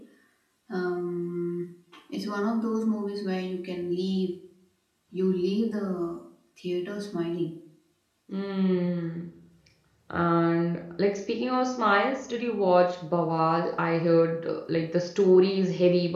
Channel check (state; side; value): identical; both; correlation 1.00